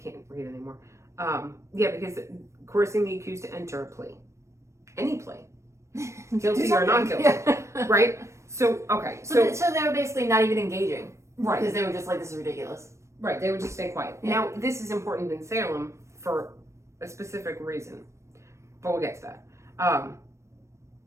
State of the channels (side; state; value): left; late; 0.14 ms